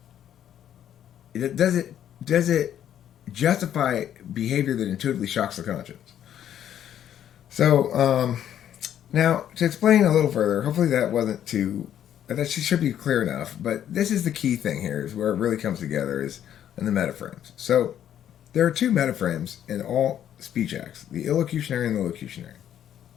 Does it justify behavior that intuitively shocks the conscience? So now to explain a little further, hopefully that should be clear enough. But this is the key thing here, is where it really comes together, is in the metaframes. So there are two metaframes in all speech acts: the illocutionary and the locutionary.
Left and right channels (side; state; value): right; quieter; 10.3 dB